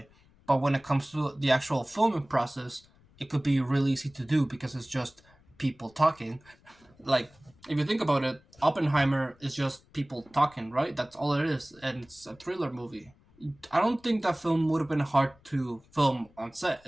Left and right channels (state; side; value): noise; left; rumble, 29 dB below the sound